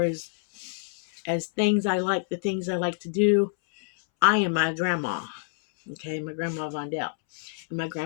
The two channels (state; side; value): silent; right; 60 dB below the other